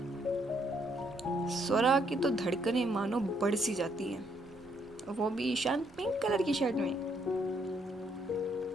स्वरा की तो धड़कनें मानो बढ़ सी जाती हैं, वो भी ईशान पिंक कलर की शर्ट में।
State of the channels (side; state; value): both; normal; correlation 0.72